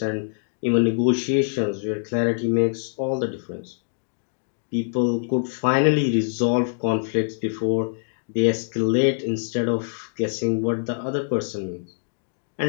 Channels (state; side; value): silent; right; digital silence